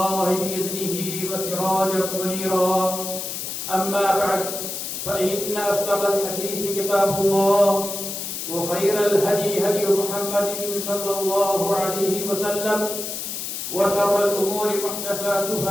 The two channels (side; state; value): left; noise; hiss, 5 dB below the sound